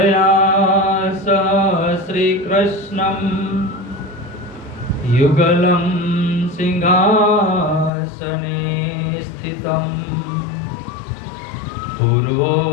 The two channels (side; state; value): right; drops out; at 7.9 s